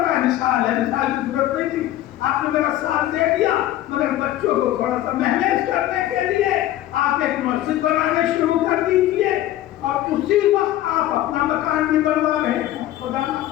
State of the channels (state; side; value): quieter; right; 13.8 dB